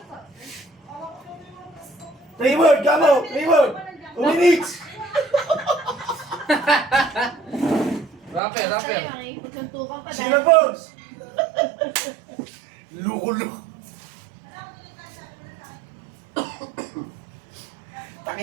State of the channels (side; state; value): left; drops out; at 8.4 s